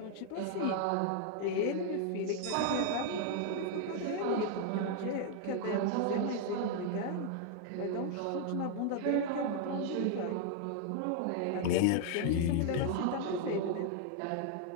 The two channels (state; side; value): different; both; correlation 0.00